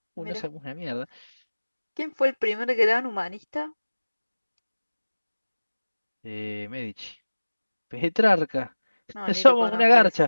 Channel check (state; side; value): inverted; both; correlation -1.00